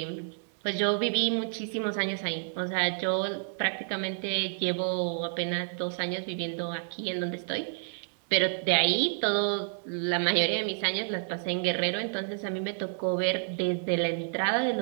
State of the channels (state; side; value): silent; left; digital silence